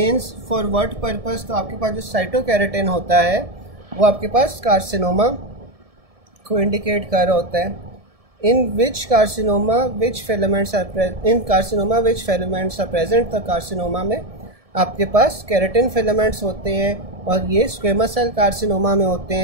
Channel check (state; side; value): late; left; 1.7 ms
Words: फॉर व्हाट पर्पस, तो आपके पास जो साइटोकेराटिन होता है वो आपके पास कार्सिनोमा को इंडिकेट कर रहा होता है। In which carcinoma which filaments are present, तो कार्सिनोमा में आपके पास केराटिन फिलामेंट्स होते हैं और ये स्क्वेमस सेल कार्सिनोमा में होते